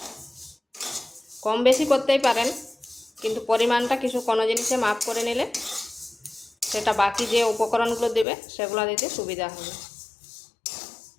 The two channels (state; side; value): drops out; right; at 8.2 s